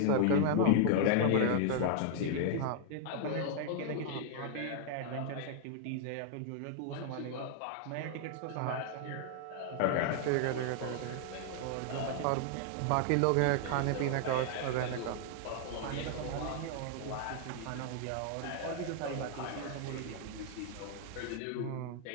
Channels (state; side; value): different; both; correlation 0.00